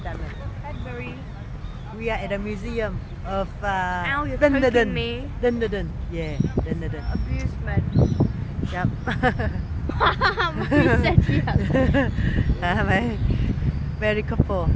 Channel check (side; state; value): both; identical; correlation 1.00